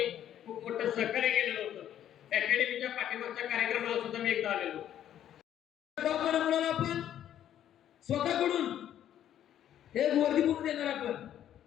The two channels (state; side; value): quieter; right; 10.9 dB